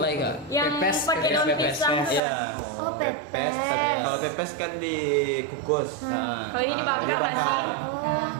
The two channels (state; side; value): drops out; left; at 2.2 s